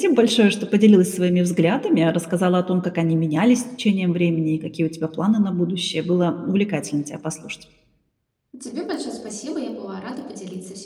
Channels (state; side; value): identical; both; correlation 1.00